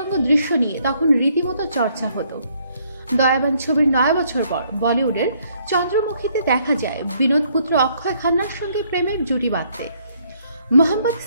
দৃশ্য নিয়ে তখন রীতিমতো চর্চা হতো। দয়াবান ছবির 9 বছর পর বলিউডের চন্দ্রমুখীতে দেখা যায় বিনোদ পুত্র অক্ষয় খান্নার সঙ্গে প্রেমের জুটি বাঁধতে। মোহাম্মদ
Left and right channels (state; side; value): inverted; both; correlation -0.67